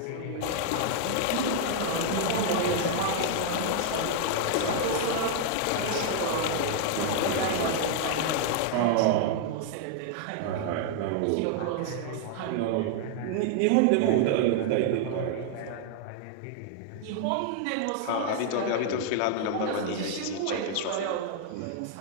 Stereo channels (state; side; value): different; both; correlation 0.00